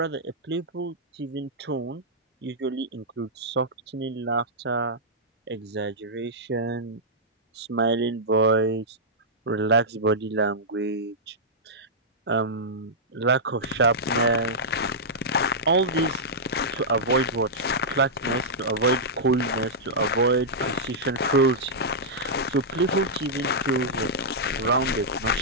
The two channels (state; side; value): normal; both; correlation -0.10